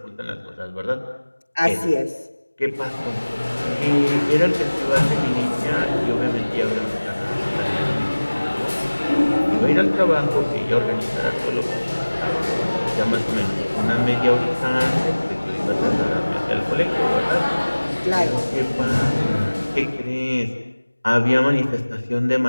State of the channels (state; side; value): inverted; both; correlation -1.00